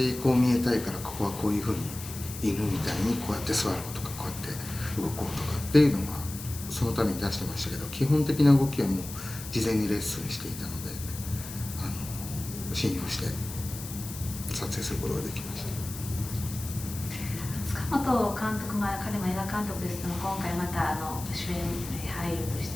こう見えたいからここはこういうふうに犬みたいにこうやって座ろうとかこうやって動こうとかっていうのはそのために出してましたけど、基本的な動きはもう事前にレッスンしていたので信用して撮影することができました。塚本監督、彼も映画監督ですけども、今回また主演俳優とし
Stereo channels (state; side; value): noise; left; hiss, 11 dB below the sound